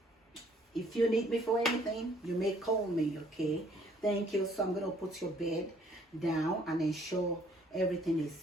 if you need me for anything, you may call me, okay? Thank you. So I'm going to put your bed down and ensure everything is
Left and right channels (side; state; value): both; normal; correlation 0.61